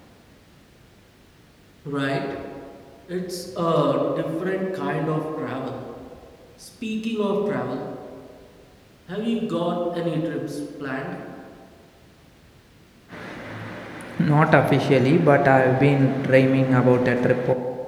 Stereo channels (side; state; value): both; identical; correlation 1.00